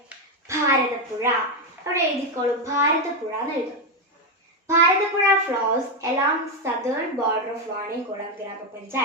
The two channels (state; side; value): normal; both; correlation 0.06